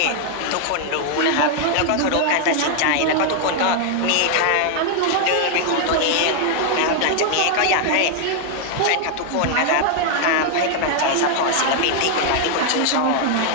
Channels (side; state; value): both; different; correlation 0.00